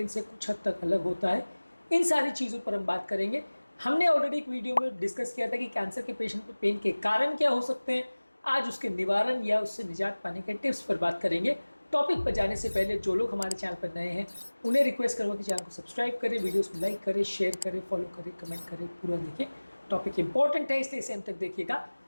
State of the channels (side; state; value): both; inverted; correlation -1.00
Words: से कुछ हद तक अलग होता है। इन सारी चीज़ों पर हम बात करेंगे। हमने ऑलरेडी एक वीडियो में डिस्कस किया था कि कैंसर के पेशेंट में पेन के कारण क्या हो सकते हैं। आज उसके निवारण या उससे निजात पाने के टिप्स पर बात करेंगे। टॉपिक पर जाने से पहले जो लोग हमारे चैनल पर नए हैं उन्हें रिक्वेस्ट करूँगा कि चैनल को सब्सक्राइब करें, वीडियोस को लाइक करें, शेयर करें, फॉलो करें, कमेंट करें, पूरा देखें। टॉपिक इंपॉर्टेंट है इसलिए इसे अंत तक देखिएगा।